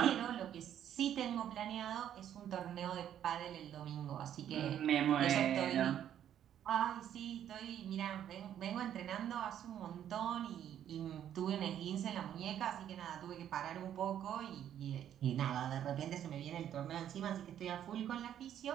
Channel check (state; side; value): quieter; left; 10.3 dB